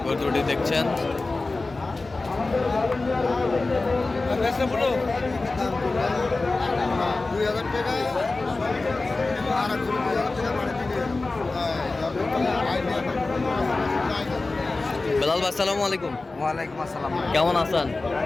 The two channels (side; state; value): right; quieter; 3.4 dB